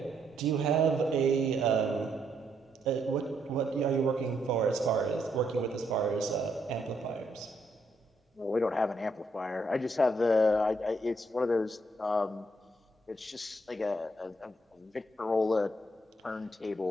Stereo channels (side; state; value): both; normal; correlation 0.75